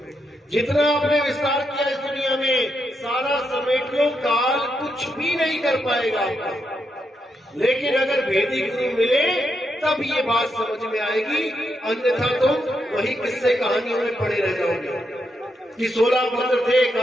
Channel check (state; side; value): normal; both; correlation 0.82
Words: जितना आपने विस्तार किया इस दुनिया में, सारा समेट लो, काल कुछ भी नहीं कर पाएगा आपका। लेकिन अगर भेदी गुरु मिले तब ये बात समझ में आएगी, अन्यथा तुम वही किस्से कहानियों में पड़े रह जाओगे कि 16 पुत्र थे,